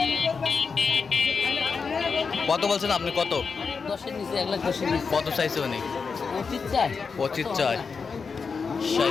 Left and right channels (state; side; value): quieter; right; 5.3 dB